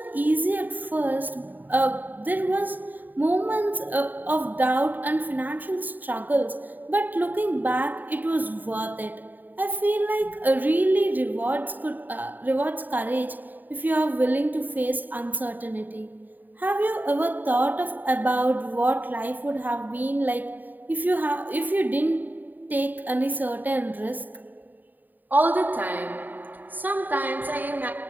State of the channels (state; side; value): late; left; 0.087 ms